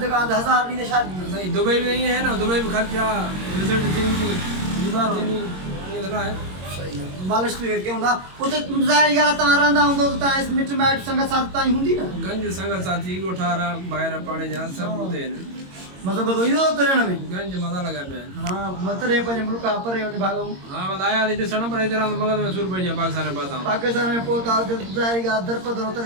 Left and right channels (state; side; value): late; left; 22 ms